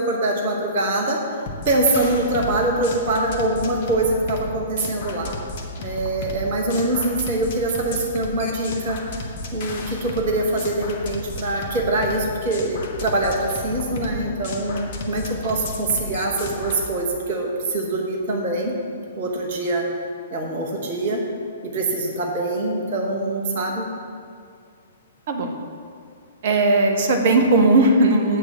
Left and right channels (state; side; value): inverted; both; correlation -0.39